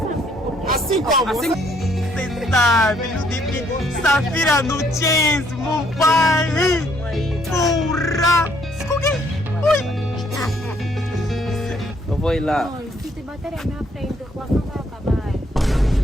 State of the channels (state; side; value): normal; both; correlation 0.67